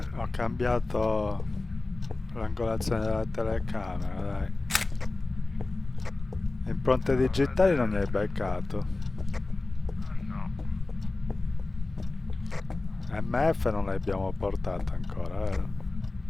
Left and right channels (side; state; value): right; quieter; 3.2 dB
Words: Ho cambiato l'angolazione della telecamera, dai. Impronte digitali non ne hai beccato. Ah no. MF non l'abbiamo portata ancora, vero?